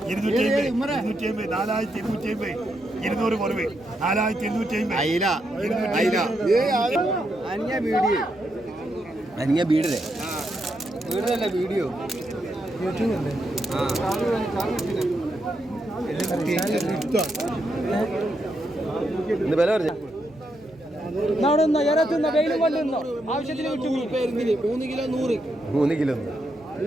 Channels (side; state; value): left; noise; hum, 29 dB below the sound